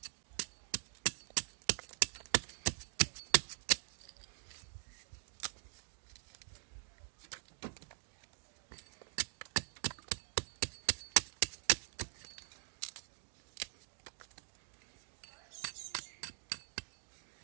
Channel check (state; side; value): silent; left; digital silence